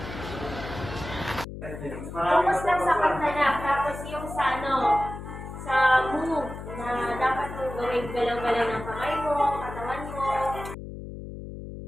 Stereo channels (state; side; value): noise; left; hum, 10 dB below the sound